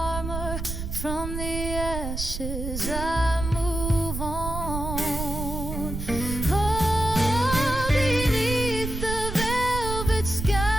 from the ashes. I move on. Oh, beneath the velvet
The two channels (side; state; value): right; noise; rumble, 5 dB below the sound